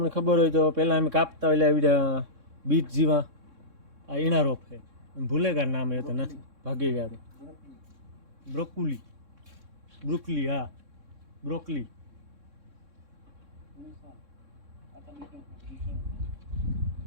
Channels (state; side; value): late; left; 3.6 ms